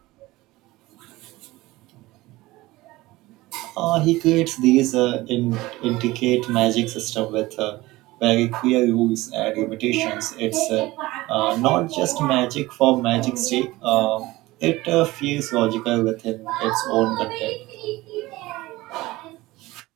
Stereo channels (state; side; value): quieter; left; 19.2 dB